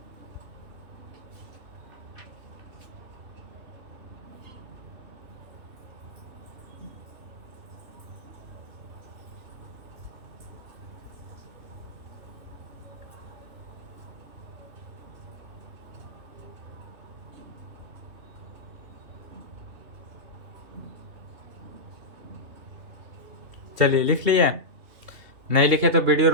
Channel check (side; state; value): left; late; 3.0 ms